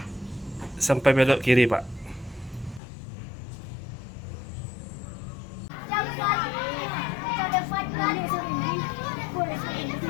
sampai belok kiri, Pak.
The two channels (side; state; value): right; drops out; at 2.8 s